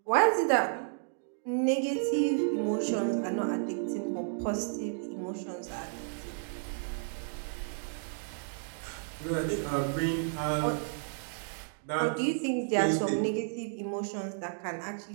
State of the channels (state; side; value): silent; left; digital silence